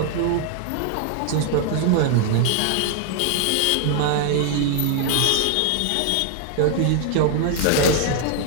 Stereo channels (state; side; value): different; both; correlation 0.00